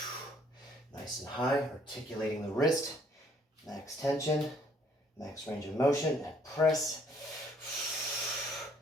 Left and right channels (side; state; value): both; normal; correlation 0.63